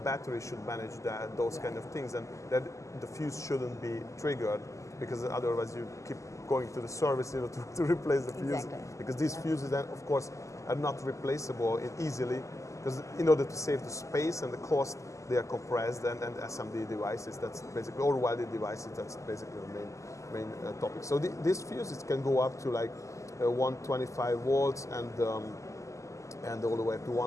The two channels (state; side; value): late; right; 0.15 ms